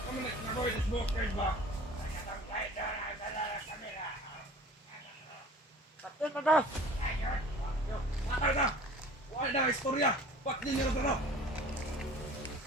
nak nagawa sa smoker ba? Kapten na ka! Patay na! Wala na istorya! Ba't di nyo na ito?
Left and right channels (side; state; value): both; normal; correlation 0.44